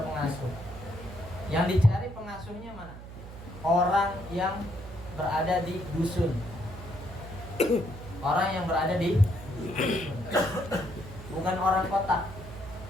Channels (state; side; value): noise; right; hum, 14 dB below the sound